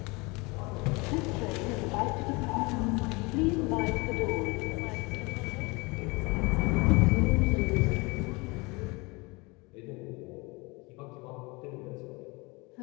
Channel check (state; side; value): quieter; right; 26.4 dB